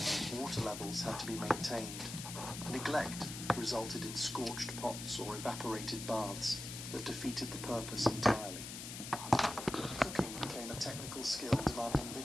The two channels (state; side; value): noise; left; hiss, 8 dB below the sound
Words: Water levels had to be maintained. Neglect resulted in scorched pots or evaporated baths that defeated the purpose entirely. Cooking became a technical skill demanding